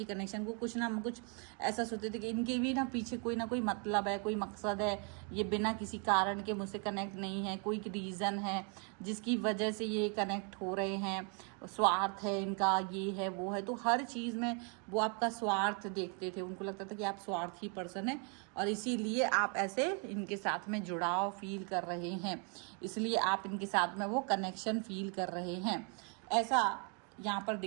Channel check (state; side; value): quieter; left; 37.4 dB